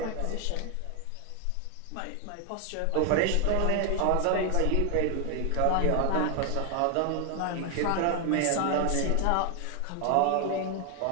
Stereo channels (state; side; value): different; both; correlation 0.00